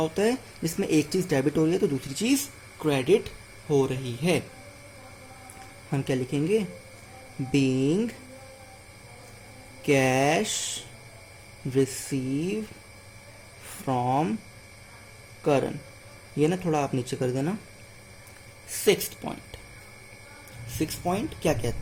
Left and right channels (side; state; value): both; identical; correlation 1.00